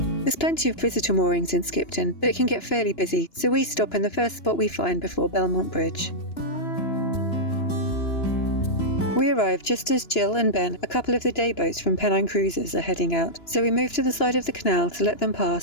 There's plenty of visitor moorings in Skipton, but it can get fairly busy, so we stop in the first spot we find before Belmont Bridge. We arrive just as Jill and Ben, a couple of the day boats from Pennine Cruises, are heading out, so we move to the side of the canal to let them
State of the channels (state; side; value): late; right; 2.9 ms